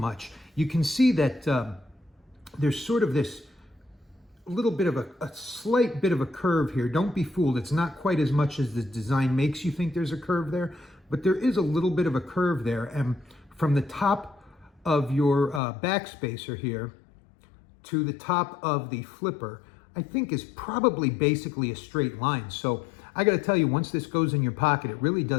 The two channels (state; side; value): drops out; right; at 15.6 s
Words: You can see that there's sort of this little bit of a slight bit of a curve here. Don't be fooled. It's not quite as much as the design makes you think there's a curve there, but there is a little bit of a curve there. And from the top of your backspacer here to the top of the flipper, I think is probably basically a straight line. So I got to tell you, once this goes in your pocket, it really